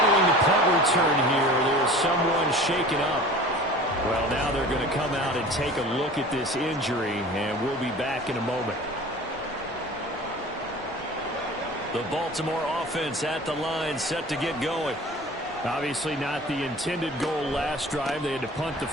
the punt return here, there's someone shaken up. Well, now they're going to come out and take a look at this injury, and we'll be back in a moment. The Baltimore offense at the line, set to get going. Obviously not the intended goal last drive. They had to punt the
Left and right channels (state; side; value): normal; both; correlation 0.41